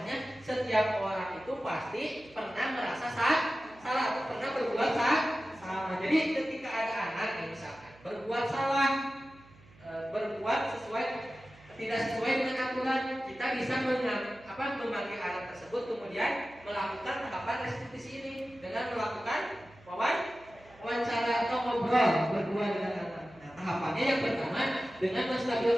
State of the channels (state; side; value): noise; right; hum, 25 dB below the sound